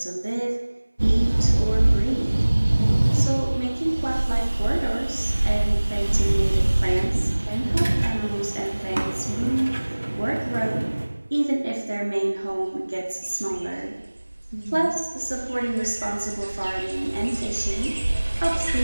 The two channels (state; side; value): inverted; both; correlation -1.00